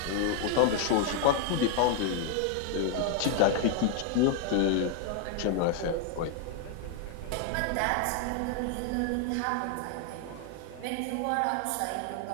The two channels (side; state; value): both; different; correlation 0.00